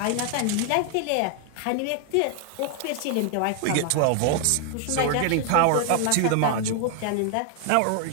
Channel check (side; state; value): both; different; correlation 0.00